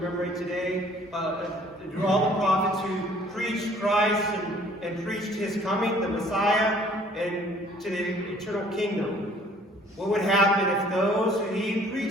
today, to all the prophets who preached Christ and preached his coming, the Messiah, and to the eternal kingdom. What would happen if those who he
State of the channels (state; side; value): normal; both; correlation 0.56